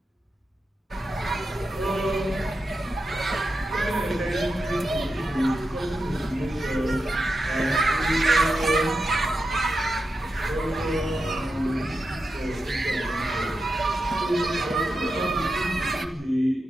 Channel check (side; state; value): both; normal; correlation 0.89